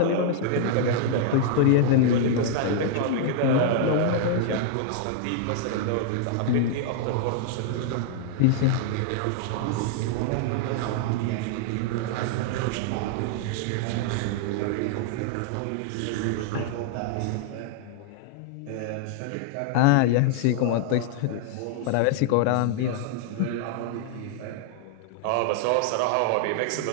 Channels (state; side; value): different; both; correlation -0.01